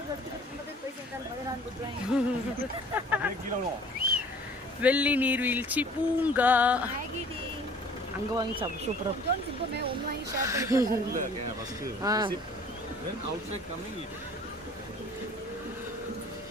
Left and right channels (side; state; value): both; normal; correlation 0.50